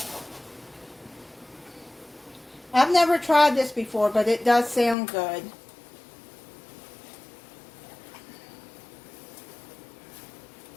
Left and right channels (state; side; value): drops out; right; at 5.0 s